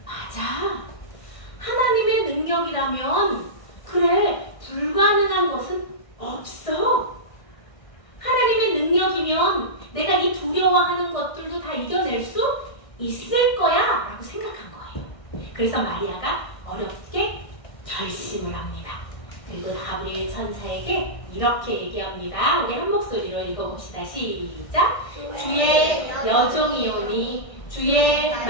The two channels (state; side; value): late; right; 1.6 ms